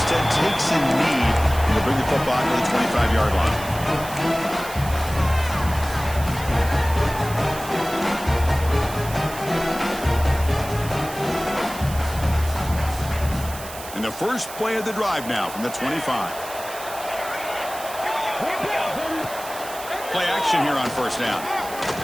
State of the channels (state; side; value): noise; right; hiss, 13 dB below the sound